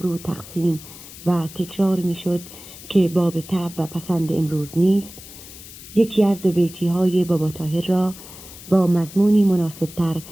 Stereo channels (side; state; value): left; noise; hiss, 16 dB below the sound